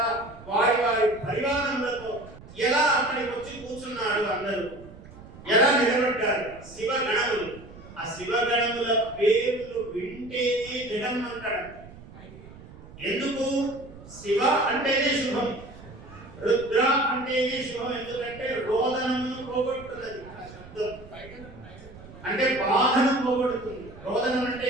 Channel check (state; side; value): noise; right; rumble, 18 dB below the sound